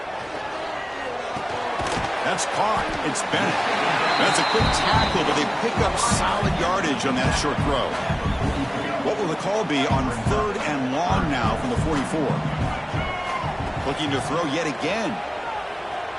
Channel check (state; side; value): identical; both; correlation 1.00